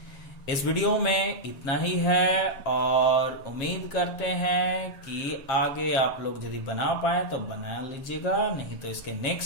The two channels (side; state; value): right; late; 7.4 ms